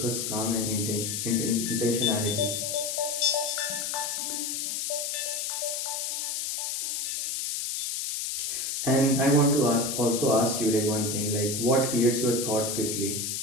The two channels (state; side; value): noise; left; hiss, 2 dB below the sound